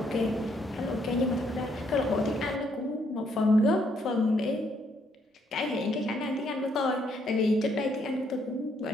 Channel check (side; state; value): both; normal; correlation 0.71